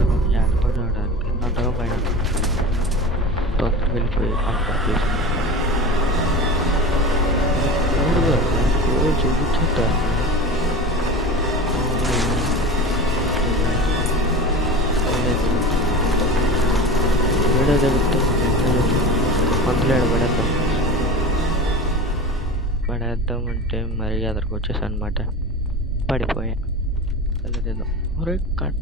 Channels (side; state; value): both; normal; correlation 0.32